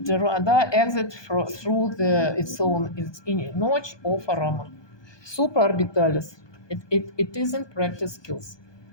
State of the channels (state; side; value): late; right; 1.2 ms